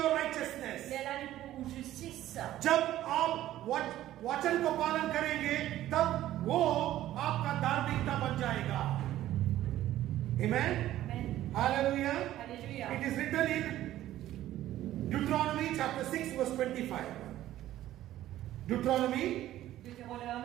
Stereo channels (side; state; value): left; quieter; 13.7 dB